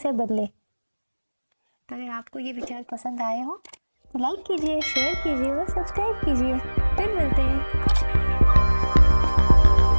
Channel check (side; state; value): both; inverted; correlation -1.00